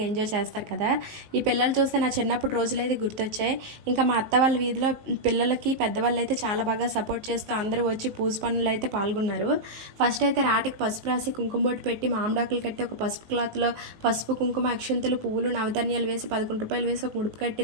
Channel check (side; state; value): left; late; 19 ms